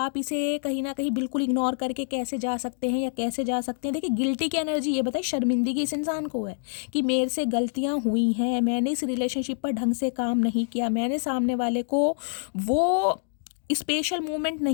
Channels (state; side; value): silent; right; digital silence